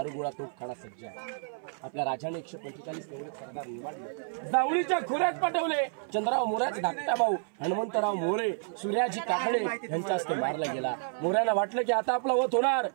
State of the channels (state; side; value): silent; left; 58 dB below the other